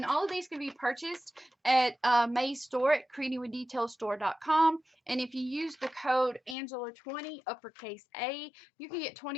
all of these can be purchased at May's store at creatingwithdetailstore.com. And if you use the code Angela20 uppercase A, you can get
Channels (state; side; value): drops out; right; at 6.6 s